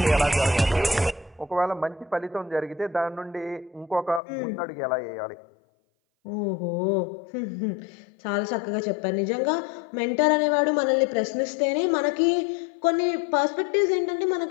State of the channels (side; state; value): right; drops out; at 4.2 s